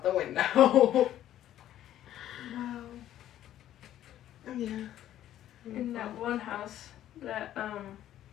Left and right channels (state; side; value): quieter; right; 12.2 dB